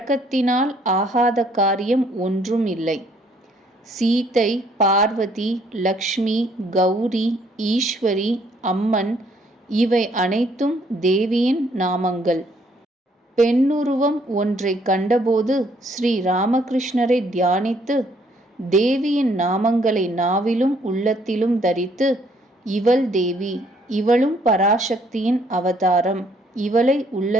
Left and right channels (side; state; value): both; normal; correlation 0.66